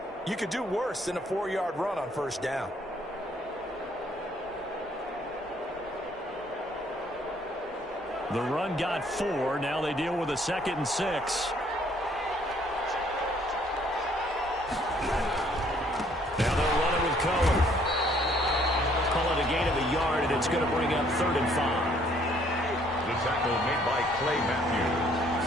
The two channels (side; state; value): both; normal; correlation 0.63